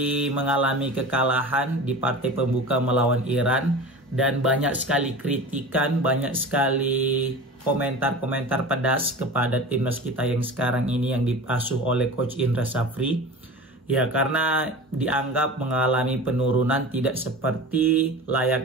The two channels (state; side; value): normal; both; correlation 0.34